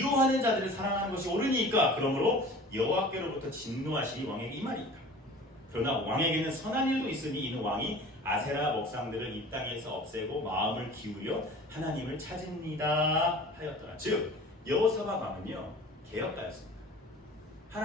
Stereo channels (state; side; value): normal; both; correlation 0.43